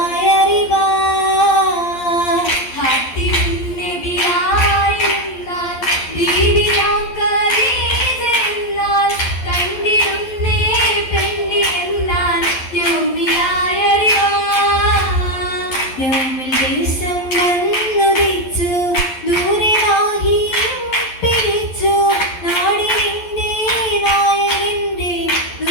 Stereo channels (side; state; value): right; late; 11 ms